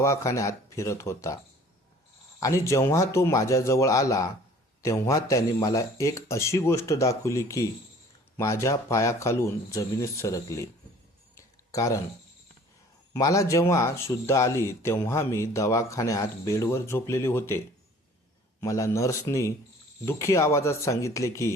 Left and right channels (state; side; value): normal; both; correlation 0.50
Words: फिरत होता आणि जेव्हा तो माझ्याजवळ आला तेव्हा त्याने मला एक अशी गोष्ट दाखवली की माझ्या पायाखालून जमिनीत सरकली. कारण मला जेव्हा शुद्ध आली तेव्हा मी दवाखान्यात बेडवर झोपलेले होते. मला नर्सनी दुःखी आवाजात सांगितले